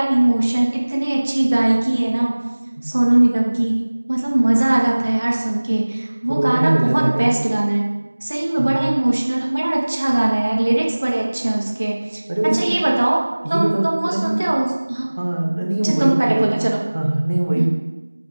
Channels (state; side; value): inverted; both; correlation -1.00